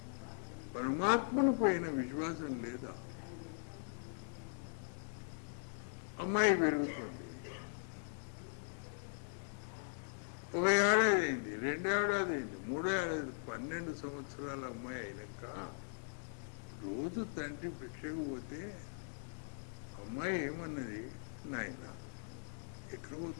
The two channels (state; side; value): silent; right; digital silence